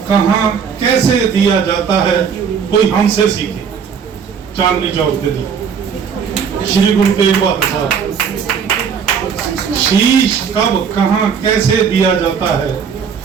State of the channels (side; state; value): left; quieter; 6.8 dB